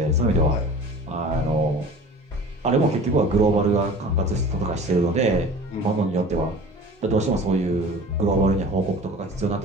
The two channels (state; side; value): normal; both; correlation 0.41